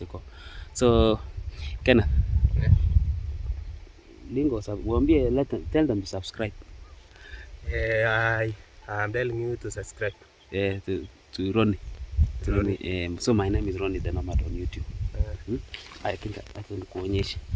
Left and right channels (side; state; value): both; identical; correlation 1.00